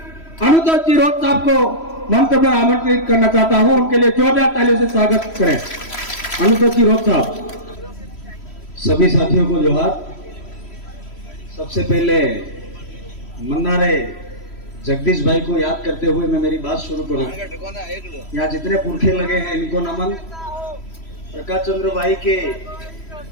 अनुतोष जी रोज साहब को मंच पर आमंत्रित करना चाहता हूं। उनके लिए जोरदार तालियों से स्वागत करें। अनुतोष जी रोज साहब। सभी साथियों को जोहार। सबसे पहले मन्नारे जगदीश भाई को याद करते हुए मैं मेरी बात शुरू करूं। यहाँ जितने पुरखे लगे हैं इनको नमन। प्रकाश चंद्र भाई के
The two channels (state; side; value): late; right; 3.1 ms